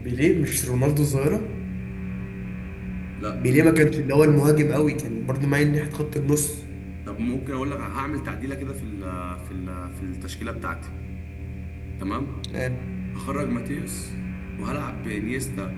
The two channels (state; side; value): identical; both; correlation 1.00